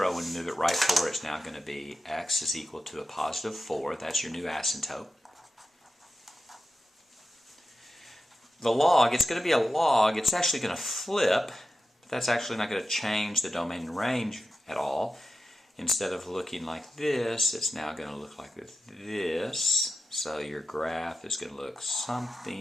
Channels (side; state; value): both; normal; correlation 0.90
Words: When you move it right 4, it's now going to be x is equal to a positive 4. That's your new asymptote. The log, it's going to be a log. It's actually going to flip, but that's actually not going to change the domain and range at all. Instead of looking like this, it's now going to look like this. So your graph is going to look